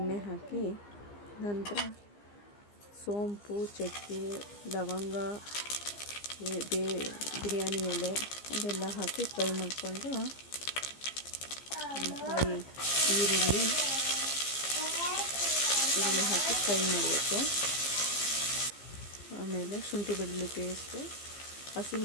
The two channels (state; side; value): late; right; 15 ms